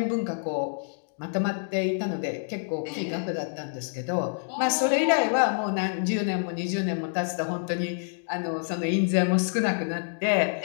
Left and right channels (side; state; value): right; silent; digital silence